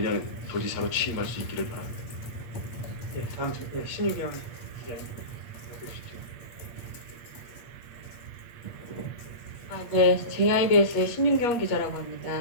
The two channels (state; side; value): late; right; 8.4 ms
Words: 도지사로 취임할 수 있기를 바랍니다. 예, 다음 신유경 기자님 해주십시오. 네, JIBS의 신윤경 기자라고